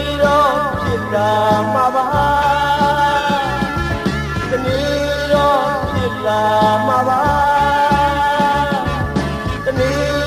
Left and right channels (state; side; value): identical; both; correlation 1.00